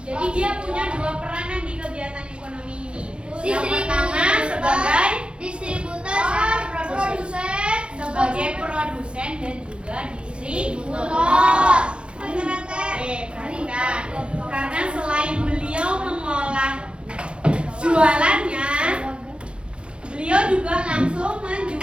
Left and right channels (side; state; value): left; late; 0.056 ms